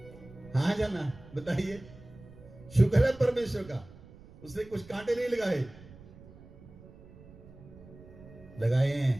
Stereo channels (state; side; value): noise; right; rumble, 20 dB below the sound